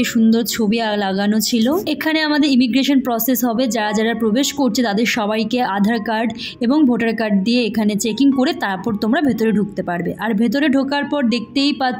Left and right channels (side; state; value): both; identical; correlation 1.00